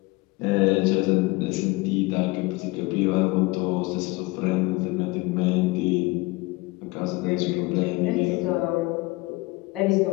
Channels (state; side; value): quieter; right; 23.0 dB